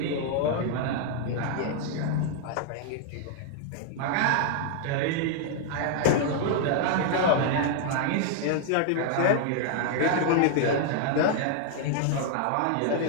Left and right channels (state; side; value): different; both; correlation 0.00